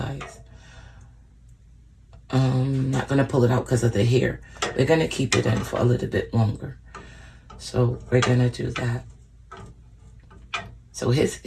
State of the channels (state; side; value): identical; both; correlation 1.00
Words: Not gonna pull it out because of the hair. We're gonna keep it in for a little bit longer. So we're gonna do that. So